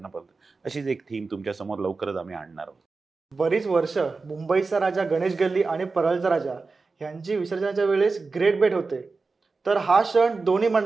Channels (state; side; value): quieter; left; 4.1 dB